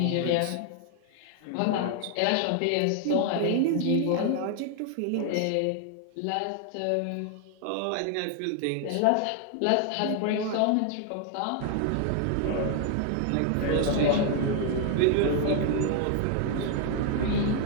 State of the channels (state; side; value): different; both; correlation 0.00